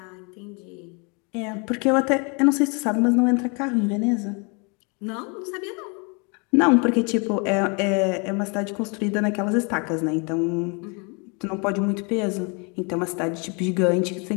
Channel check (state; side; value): quieter; right; 33.2 dB